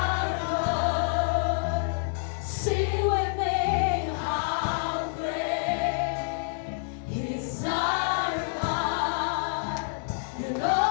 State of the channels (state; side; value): silent; right; digital silence